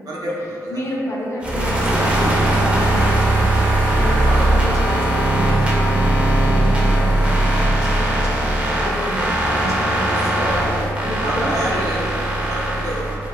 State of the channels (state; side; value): normal; both; correlation 0.81